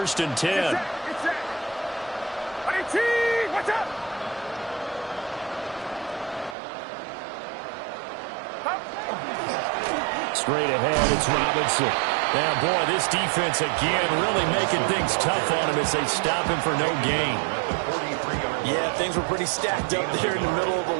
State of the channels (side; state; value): left; drops out; at 6.6 s